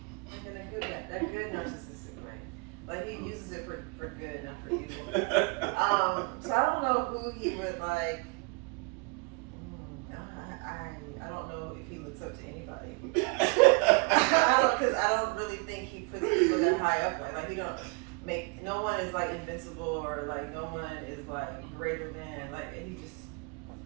Like in a good narcissistic way. Like he uses it for good, not for evil. So I don't know who he would like. I don't know if he looks up to anybody. Because I don't really think he puts people that high up. Like he don't make, no one is like invincible or like no one is like greater than, like, and he just.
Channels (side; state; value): left; quieter; 30.3 dB